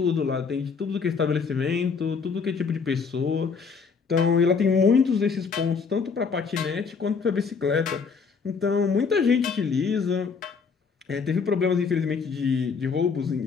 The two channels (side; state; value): right; quieter; 5.4 dB